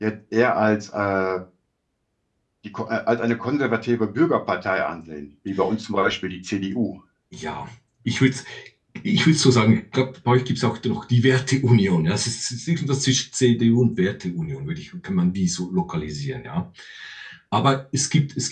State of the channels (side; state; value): both; identical; correlation 1.00